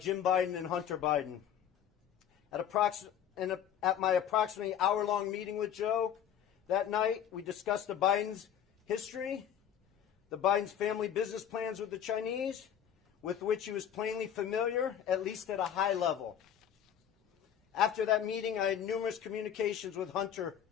Biden and Hunter Biden. At my approximately hour-long meeting with Joe that night, we discussed the Biden's history, the Biden's family business plans with the Chinese, with which he was plainly familiar, at least at a high level. After that meeting, I had numerous communications with Hunter,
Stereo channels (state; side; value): quieter; right; 9.4 dB